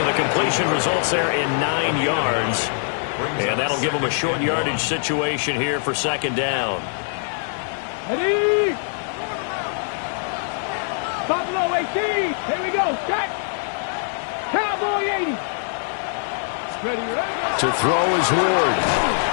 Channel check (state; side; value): silent; right; digital silence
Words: the completion results there in 9 yards. And that'll give him a short yardage situation here for 2nd down. Ready? Buffalo 18. Here we go. Check. Cowboy 80. Ready, ready. To throw is Ward.